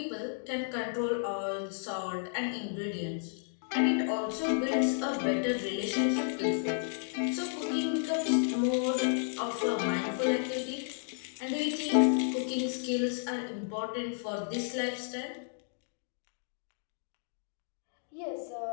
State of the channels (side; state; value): right; silent; digital silence